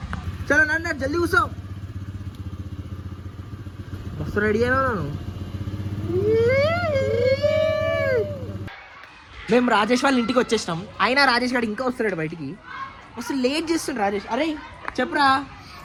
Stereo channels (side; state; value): both; identical; correlation 1.00